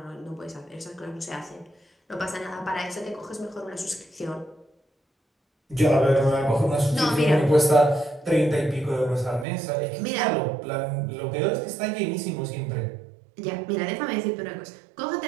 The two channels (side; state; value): left; drops out; at 9.5 s